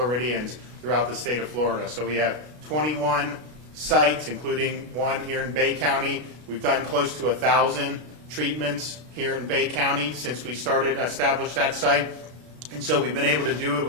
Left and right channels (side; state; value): left; late; 33 ms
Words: throughout the state of Florida. So we have 21 sites, including one here in Bay County. We've done close to 1,000 treatments here in Bay County since we established that site. And so we've been able to do it